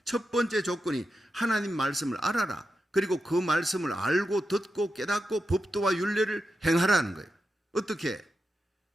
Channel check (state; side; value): normal; both; correlation 0.89